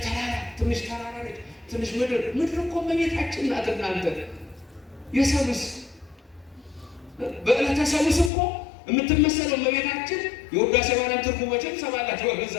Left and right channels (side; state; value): right; drops out; at 8.3 s